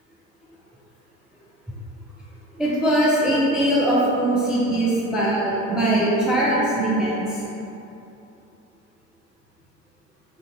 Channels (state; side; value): normal; both; correlation 0.35